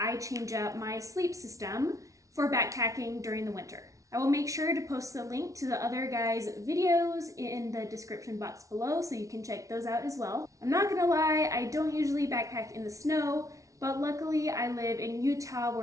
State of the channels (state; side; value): late; left; 0.16 ms